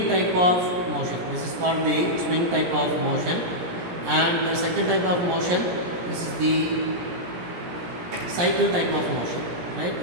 type of motion. This is called the swing type of motion. And the second type of motion, this is the cycle type of motion, right?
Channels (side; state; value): left; late; 17 ms